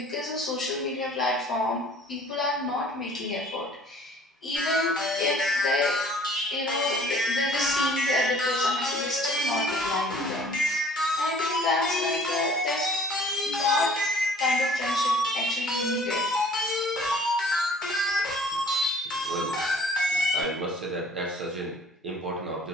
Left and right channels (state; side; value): normal; both; correlation 0.53